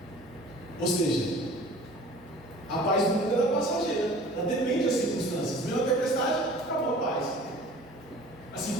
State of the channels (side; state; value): both; normal; correlation 0.46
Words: ou seja, a paz do mundo é passageira, ela depende das circunstâncias. Veio a tempestade, acabou a paz. Assim